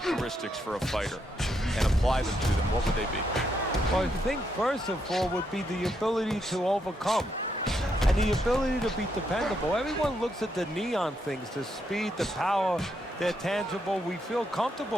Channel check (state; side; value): normal; both; correlation 0.78